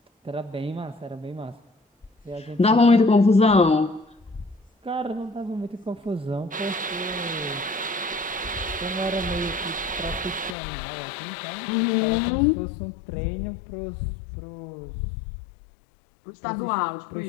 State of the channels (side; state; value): right; drops out; at 10.6 s